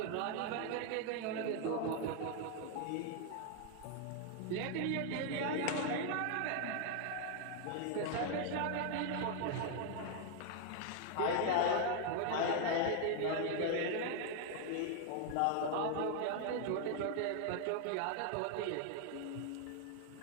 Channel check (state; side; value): different; both; correlation 0.00